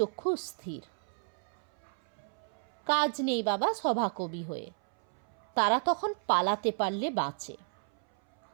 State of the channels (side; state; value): left; silent; 56 dB below the other